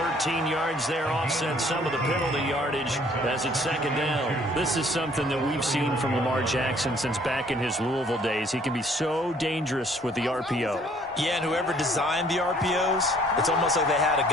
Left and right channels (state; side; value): normal; both; correlation 0.59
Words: 13 yards there offset some of the penalty yardage as it's second down. This is something that we've seen from Lamar Jackson since back in his Louisville days. He can be so dangerous with the RPO. Yeah, and whoever designed the RPOs, it's almost like they had a